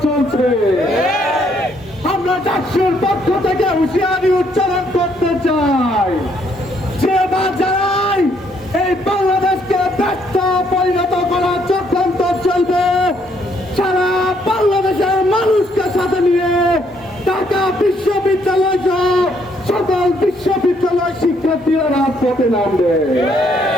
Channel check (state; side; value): normal; both; correlation 0.70